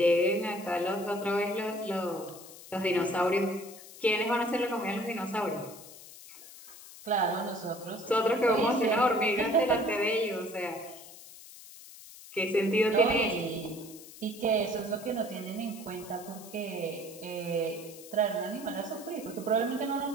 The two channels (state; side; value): noise; left; hiss, 17 dB below the sound